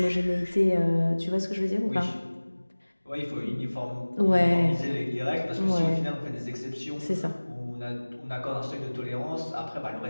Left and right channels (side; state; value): both; inverted; correlation -1.00